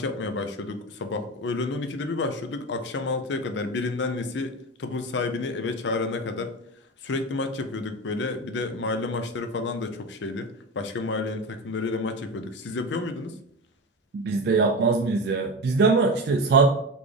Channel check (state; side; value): normal; both; correlation 0.24